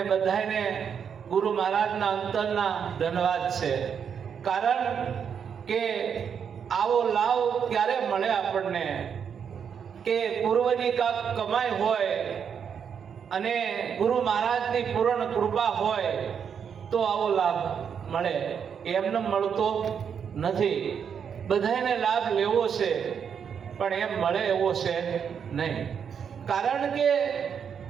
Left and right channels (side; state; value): left; quieter; 7.4 dB